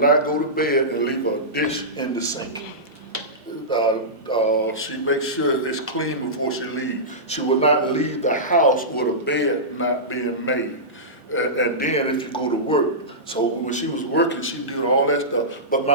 go to bed and leave a dish in the sink. She makes sure it's clean before she leaves. She will not leave the house with a bed not being made. And then if you go to work, so when she was working, she did all that stuff. But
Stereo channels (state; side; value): normal; both; correlation -0.17